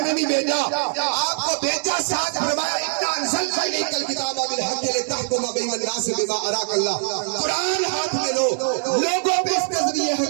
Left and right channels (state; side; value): silent; left; digital silence